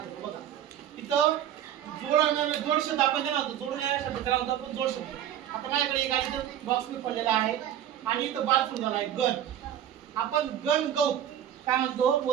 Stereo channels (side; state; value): left; quieter; 10.8 dB